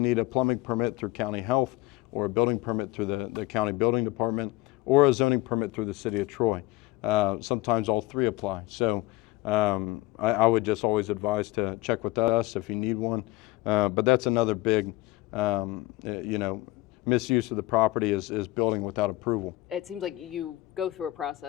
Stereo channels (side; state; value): right; quieter; 18.7 dB